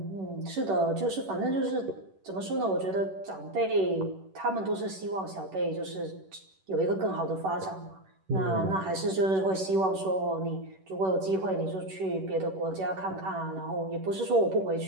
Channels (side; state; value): left; late; 11 ms